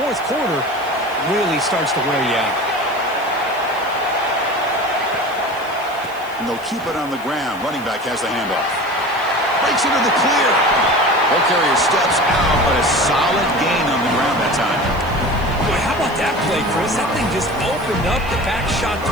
quarter really starts to wear you out. And they'll keep it on the ground. Running back has the handoff. Breaks into the clear. Ball carrier steps out, but a solid gain on the ground that time. Boy, how about that play, Chris? That thing just opened up. The back shot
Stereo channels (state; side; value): noise; left; hiss, 22 dB below the sound